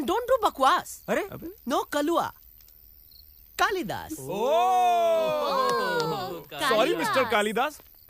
don't do बकवास। अरे नो कलुआ, कालिदास। सॉरी मिस्टर कालिदास,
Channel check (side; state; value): both; identical; correlation 1.00